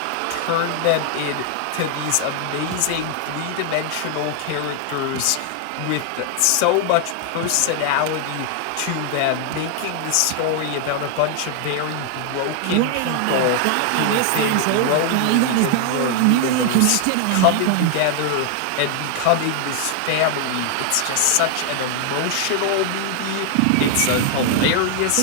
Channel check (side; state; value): both; different; correlation 0.00